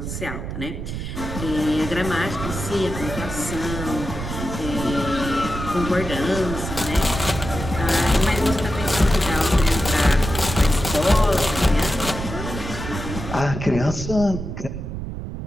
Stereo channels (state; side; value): noise; right; rumble, 6 dB below the sound